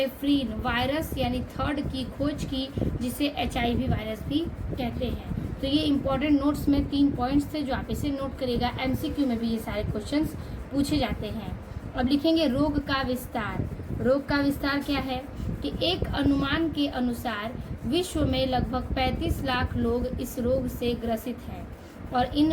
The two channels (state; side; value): identical; both; correlation 1.00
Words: वायरस यानी थर्ड की खोज की, जिसे HIV वायरस भी कहते हैं। तो ये इंपॉर्टेंट नोट्स में 3 पॉइंट्स थे जो आप इसे नोट करिएगा। MCQ में भी ये सारे क्वेश्चंस पूछे जाते हैं। अब लिखेंगे रोग का विस्तार। रोग का विस्तार क्या है कि एक अनुमान के अनुसार विश्व में लगभग 35 लाख लोग इस रोग से ग्रसित हैं और